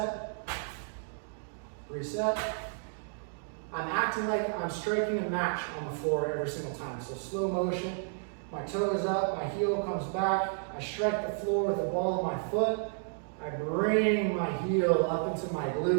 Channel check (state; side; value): silent; left; digital silence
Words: reset. I'm acting like I'm striking a match on the floor every single time. So slow motion, my toe is up, my heel comes back, I strike the floor with the ball of my foot, I bring my heel up into my